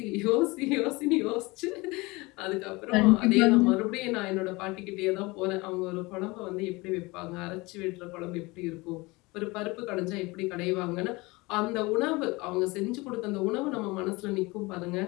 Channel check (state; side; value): quieter; right; 23.7 dB